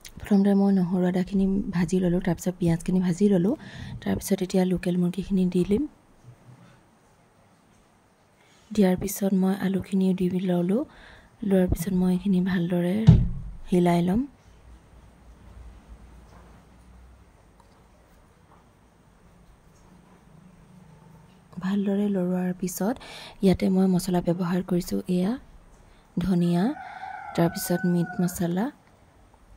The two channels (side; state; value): both; identical; correlation 1.00